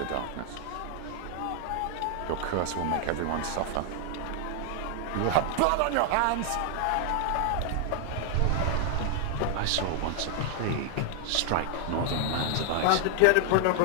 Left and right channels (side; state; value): both; different; correlation 0.00